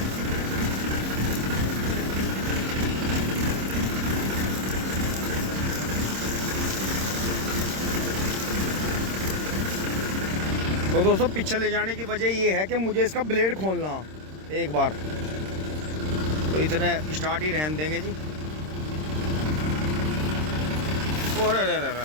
तो दोस्तों पीछे ले जाने की वजह ये है कि मुझे इसका ब्लेड खोलना एक बार, तो इतने स्टार्ट ही रहने देंगे जी। और अरे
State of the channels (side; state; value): left; late; 26 ms